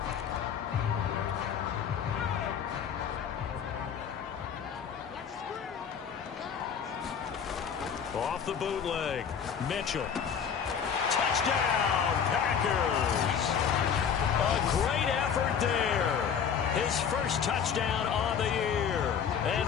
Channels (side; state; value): right; quieter; 7.3 dB